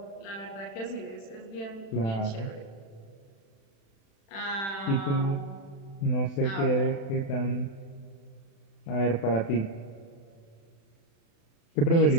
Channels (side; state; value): right; late; 36 ms